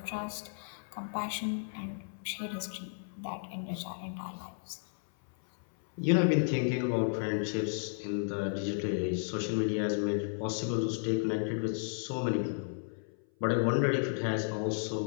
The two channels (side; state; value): right; silent; 56 dB below the other